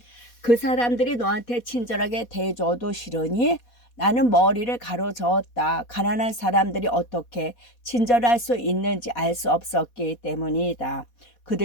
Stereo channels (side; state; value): right; late; 4.2 ms